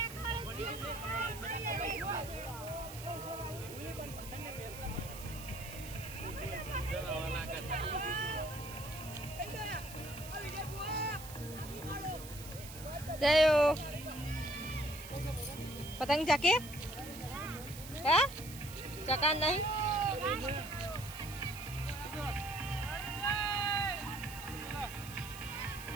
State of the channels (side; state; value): right; noise; hiss, 13 dB below the sound